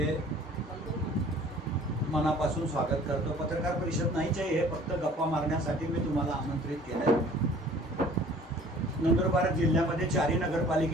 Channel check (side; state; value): both; normal; correlation 0.50